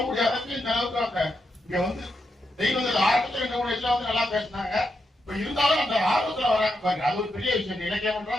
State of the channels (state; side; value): normal; both; correlation 0.84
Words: முடியாததுக்கு இந்த அளவுக்கு இங்க வந்து தெய்வங்கள் ஆரம்பத்துல இந்த மூணு வயசுல வந்து நல்லா பேசினாங்க. இப்ப இருந்தாலும் அந்த ஆர்வத்துல வராங்க பாருங்க, அது ஒரு பெரிய விஷயம். இலக்கியம்